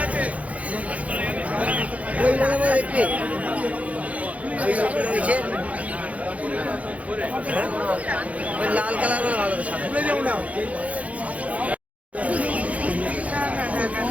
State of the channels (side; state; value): left; late; 0.067 ms